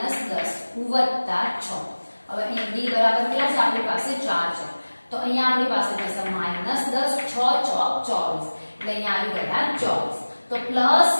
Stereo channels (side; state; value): both; inverted; correlation -1.00